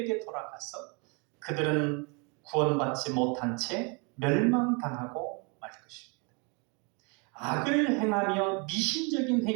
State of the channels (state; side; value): quieter; left; 32.4 dB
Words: 돌아가서 그들은 구원받지 못한 채 멸망당하고 말 것입니다. 악을 행하며 미신적인